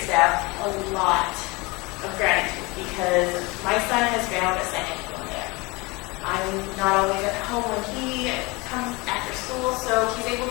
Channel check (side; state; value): right; quieter; 25.3 dB